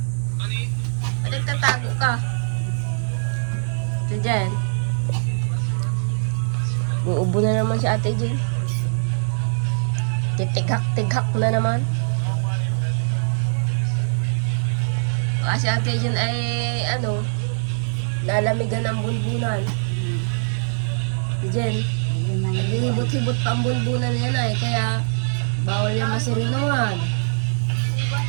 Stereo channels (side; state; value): left; silent; 64 dB below the other